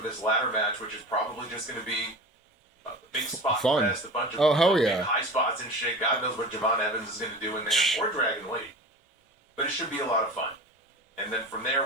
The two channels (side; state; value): both; normal; correlation 0.34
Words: this ladder match, which is probably just gonna be a big spot fest, a bunch of hell yeah. high spots and shit. God knows what Javon Evans is gonna do in there, or Dragon Lee. But it should be a lot of fun. And then from